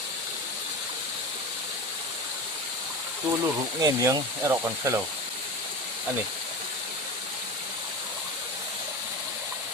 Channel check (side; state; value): both; normal; correlation 0.27